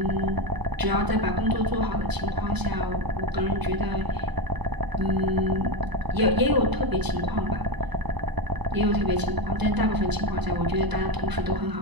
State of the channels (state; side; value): late; left; 1.0 ms